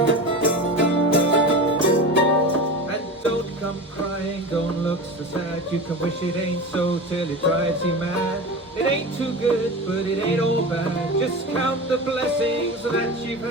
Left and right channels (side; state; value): both; normal; correlation 0.29